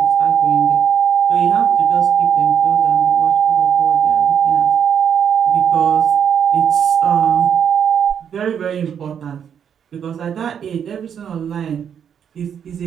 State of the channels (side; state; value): left; quieter; 8.1 dB